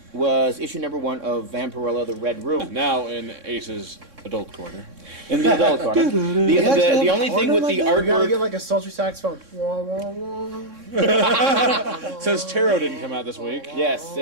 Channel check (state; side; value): late; left; 3.6 ms